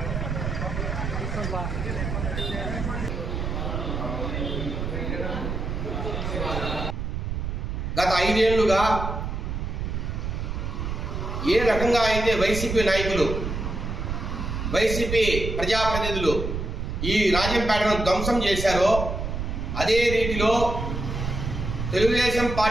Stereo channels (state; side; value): noise; right; rumble, 3 dB below the sound